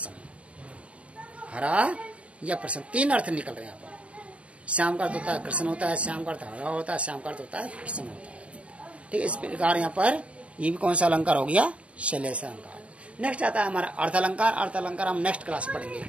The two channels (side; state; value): left; late; 0.063 ms